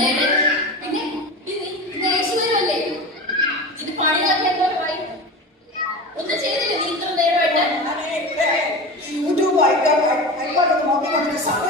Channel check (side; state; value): both; normal; correlation 0.29